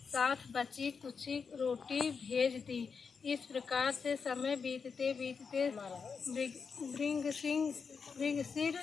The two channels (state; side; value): quieter; right; 5.6 dB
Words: बची कुची रोटी भेज दी। इस प्रकार से समय बीतते बीतते